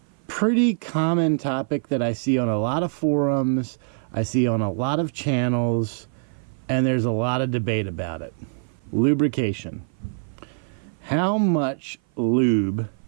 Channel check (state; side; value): silent; left; 56 dB below the other